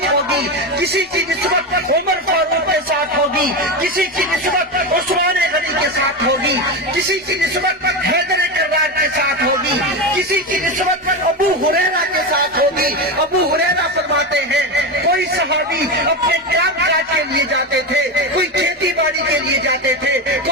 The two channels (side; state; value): both; normal; correlation 0.17